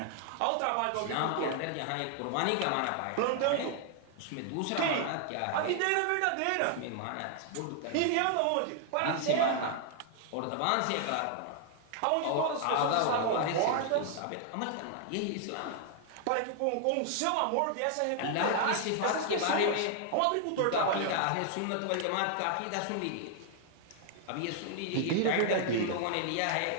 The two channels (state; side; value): different; both; correlation 0.00